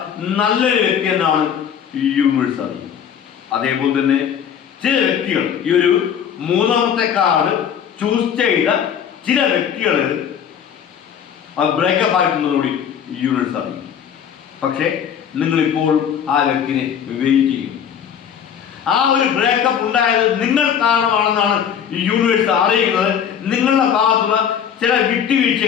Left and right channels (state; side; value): quieter; right; 8.4 dB